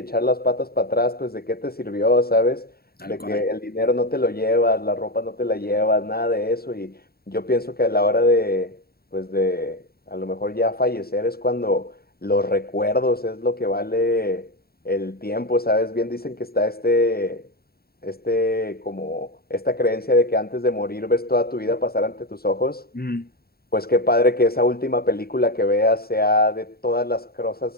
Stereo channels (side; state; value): right; late; 0.45 ms